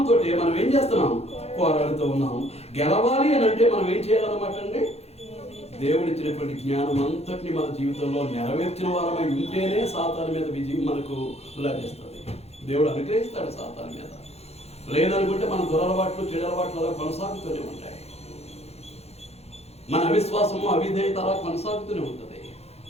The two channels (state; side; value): late; right; 0.30 ms